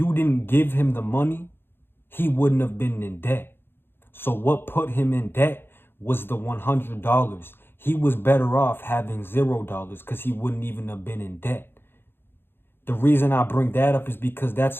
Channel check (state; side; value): late; right; 0.10 ms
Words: didn't give him the money, he wouldn't have been in debt. So what put him in debt was the $100. He was better off having $0 because he wouldn't even have been in debt. The reason I bring that up is because that's